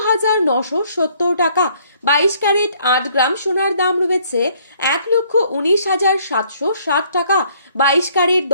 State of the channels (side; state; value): both; inverted; correlation -0.64